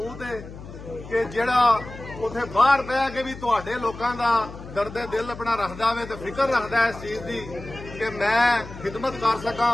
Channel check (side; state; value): left; noise; hum, 14 dB below the sound